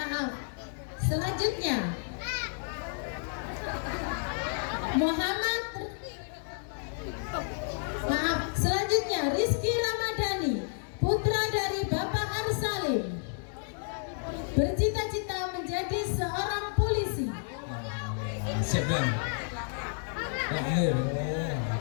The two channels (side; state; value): right; silent; 57 dB below the other